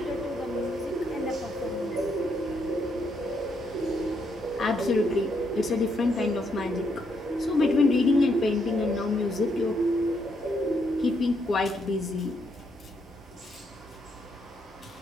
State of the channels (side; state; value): both; normal; correlation 0.76